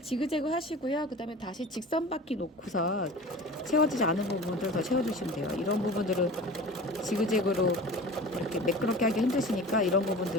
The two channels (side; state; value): both; normal; correlation 0.38